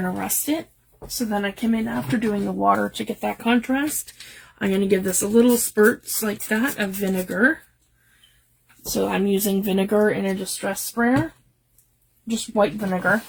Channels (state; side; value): identical; both; correlation 1.00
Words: to rust it. So then I came in after doing the water to get that contrast. I'm going to give this a little spurts like that of vinegar. So I'm using vinegar in a distress sprayer, just white vinegar.